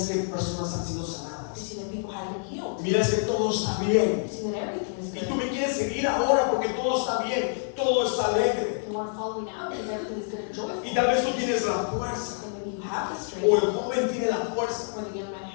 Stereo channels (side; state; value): right; silent; digital silence